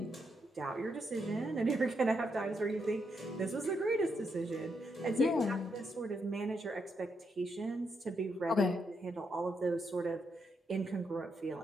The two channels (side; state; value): both; normal; correlation 0.80